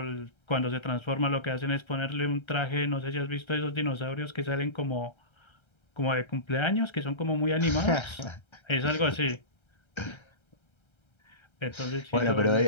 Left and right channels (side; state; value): right; late; 1.3 ms